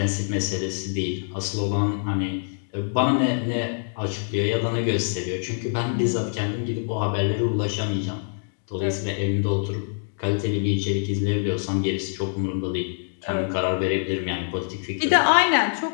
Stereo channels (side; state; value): right; silent; digital silence